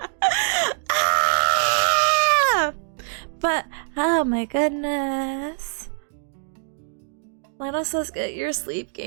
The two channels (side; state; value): left; silent; digital silence